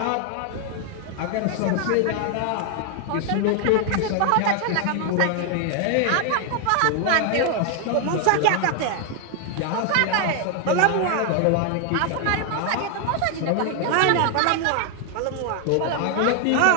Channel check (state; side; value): different; both; correlation 0.00